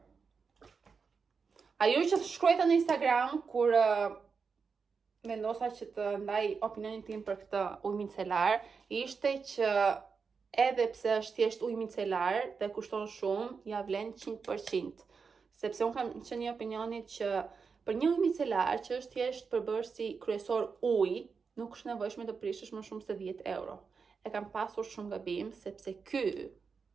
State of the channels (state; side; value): quieter; left; 5.4 dB